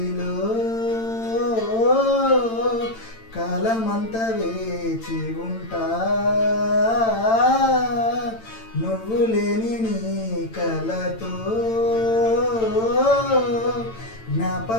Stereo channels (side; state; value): right; late; 8.9 ms